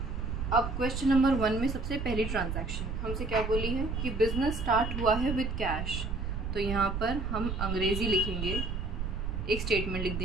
अब क्वेश्चन नंबर 1 में सबसे पहली ट्रांजैक्शन हमसे क्या बोली है कि बिजनेस स्टार्ट हुआ है विद कैश। तो यहाँ पर हम अंग्रेज़ी लिखेंगे, एक स्टेटमेंट लिख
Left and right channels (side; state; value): right; noise; rumble, 3 dB below the sound